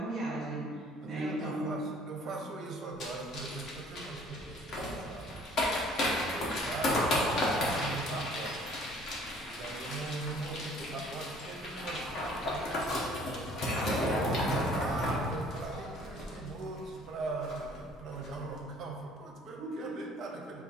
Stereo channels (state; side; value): normal; both; correlation 0.55